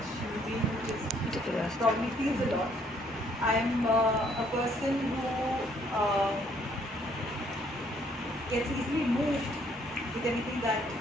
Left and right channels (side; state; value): both; normal; correlation 0.66